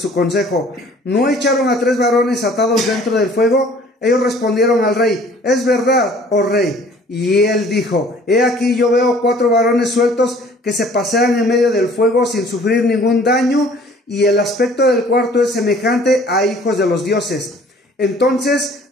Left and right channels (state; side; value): normal; both; correlation 0.53